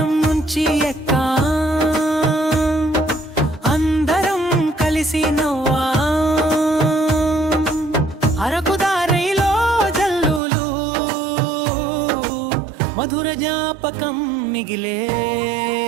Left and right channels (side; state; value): left; drops out; at 10.4 s